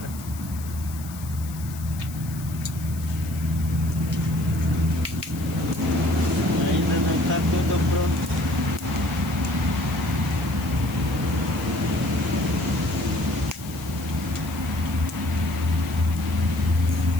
Ainda não tá tudo pronto.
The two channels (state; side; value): noise; left; hiss, 16 dB below the sound